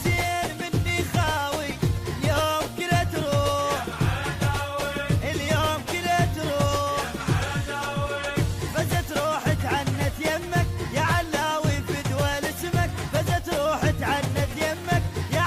مني خاوي اليوم كله تروح اليوم كله تروح فزت روحت عنت يمك يا علاوي في دول اسمك فزت روحت عنت يمك يا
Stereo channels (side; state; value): both; identical; correlation 1.00